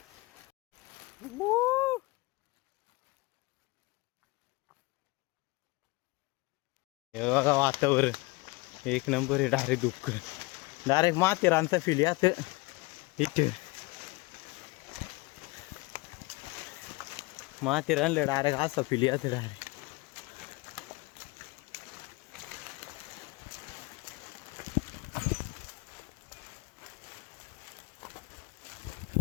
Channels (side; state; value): right; quieter; 23.7 dB